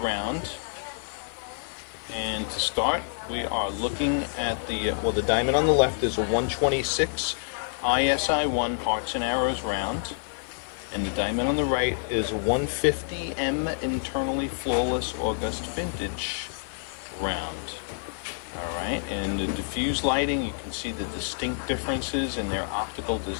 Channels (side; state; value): right; silent; 60 dB below the other